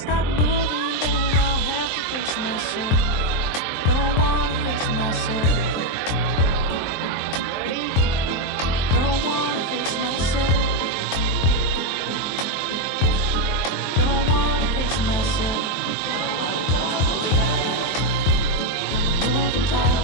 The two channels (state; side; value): late; right; 23 ms